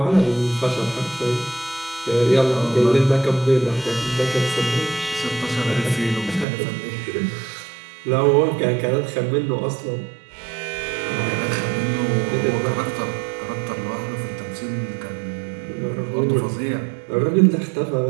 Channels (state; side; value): drops out; left; at 6.5 s